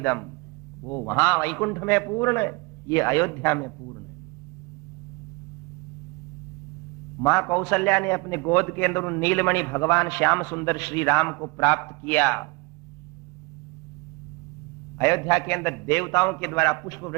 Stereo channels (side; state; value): left; quieter; 27.1 dB